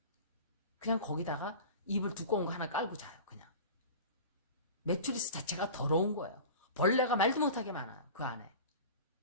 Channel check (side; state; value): both; inverted; correlation -0.35